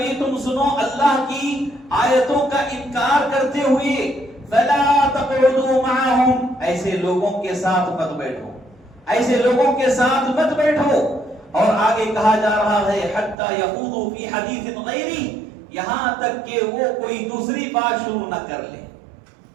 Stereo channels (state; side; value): drops out; left; at 13.4 s